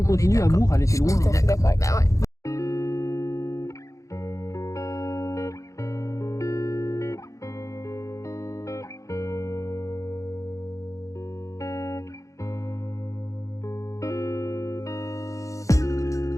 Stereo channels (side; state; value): right; late; 0.15 ms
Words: on continue, amour, elle était loin. Tout à fait d'accord avec ça. Ouais.